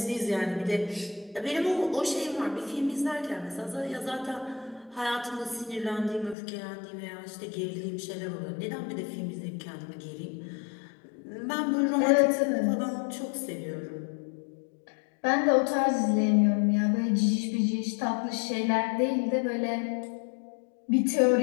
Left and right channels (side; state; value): right; drops out; at 6.4 s